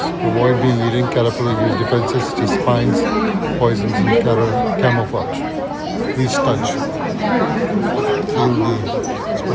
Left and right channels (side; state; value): both; identical; correlation 1.00